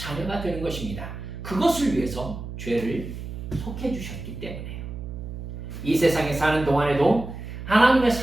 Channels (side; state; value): right; noise; hum, 9 dB below the sound